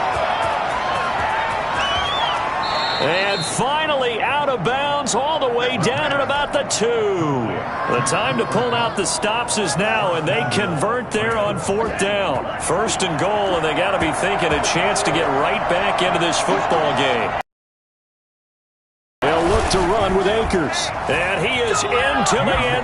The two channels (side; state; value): both; identical; correlation 1.00